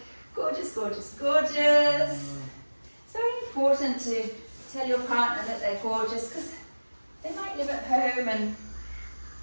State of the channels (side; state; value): both; inverted; correlation -1.00